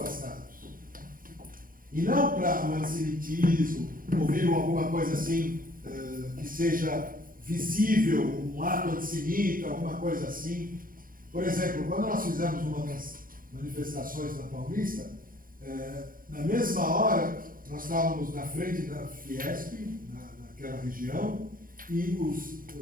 E não para o antissemitismo, ouviram alguma coisa assim, que seja visível, um ato antissemita, alguma coisa assim. Por exemplo, quando nós fizemos uma das manifestações na Paulista, na mesma hora, nós estávamos na frente da Fiesp, naquela região, e os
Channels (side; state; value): left; late; 0.41 ms